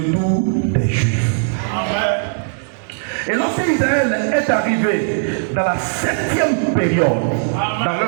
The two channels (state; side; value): silent; left; digital silence